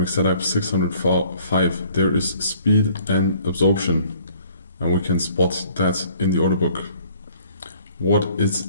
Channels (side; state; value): both; inverted; correlation -0.57